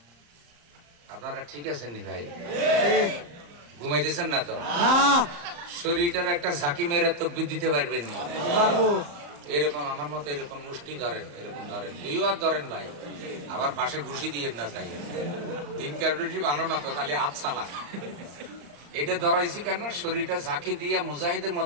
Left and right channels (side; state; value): left; late; 34 ms